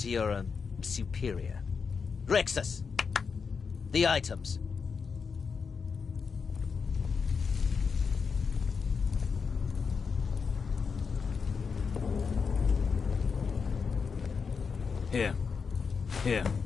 to your, superior. Rexus! The items. Here. Here.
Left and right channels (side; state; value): right; quieter; 5.6 dB